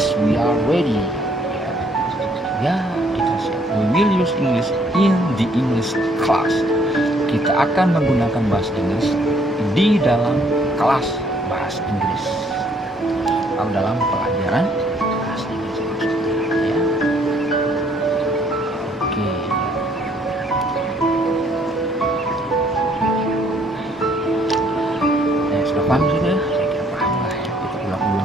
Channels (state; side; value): normal; both; correlation 0.65